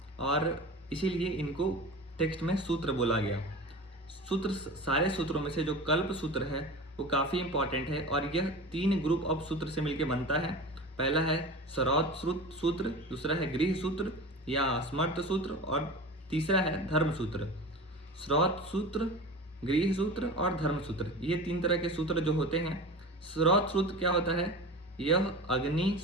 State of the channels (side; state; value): both; normal; correlation 0.33